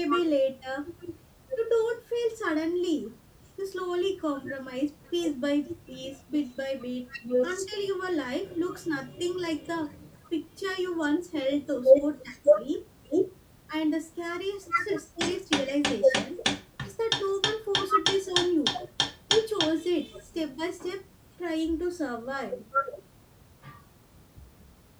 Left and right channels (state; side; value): identical; both; correlation 1.00